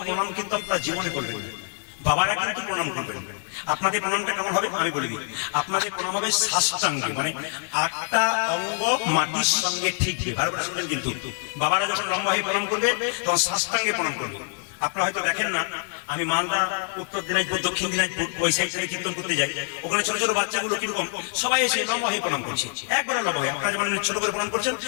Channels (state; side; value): silent; right; 57 dB below the other